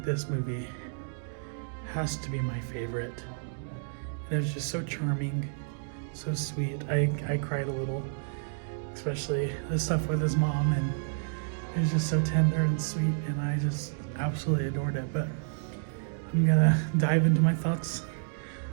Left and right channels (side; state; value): left; silent; digital silence